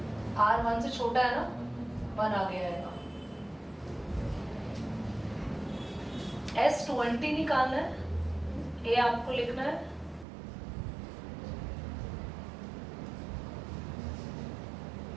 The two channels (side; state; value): left; drops out; at 10.2 s